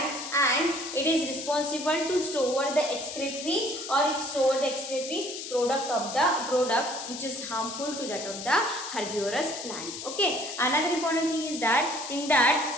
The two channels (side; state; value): left; noise; hiss, 8 dB below the sound